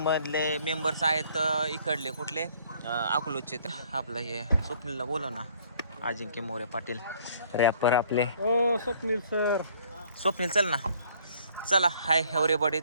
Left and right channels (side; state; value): both; inverted; correlation -0.59